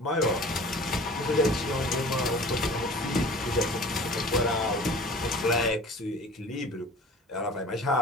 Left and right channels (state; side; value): normal; both; correlation 0.43